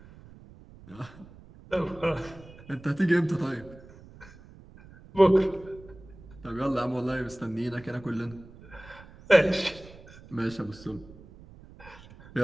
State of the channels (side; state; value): right; noise; rumble, 21 dB below the sound